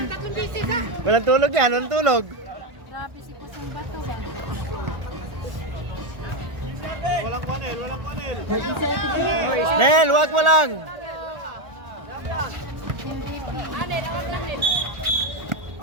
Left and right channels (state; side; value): late; left; 1.4 ms